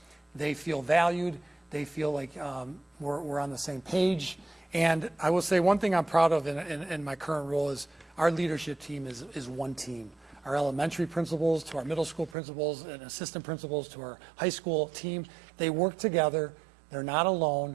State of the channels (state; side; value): drops out; left; at 12.4 s